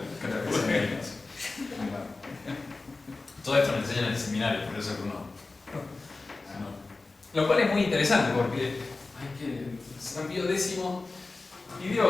Todo esto me enseñan en el seminario, por eso que uno. Lo cual es muy interesante porque hay que. San Pío X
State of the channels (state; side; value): quieter; right; 3.6 dB